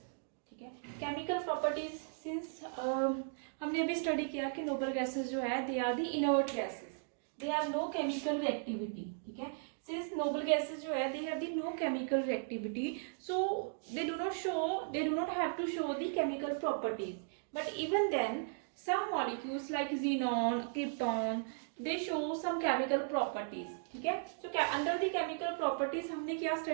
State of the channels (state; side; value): silent; left; digital silence